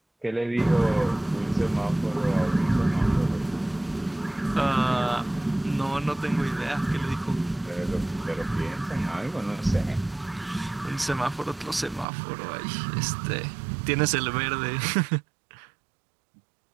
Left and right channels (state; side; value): drops out; left; at 12.1 s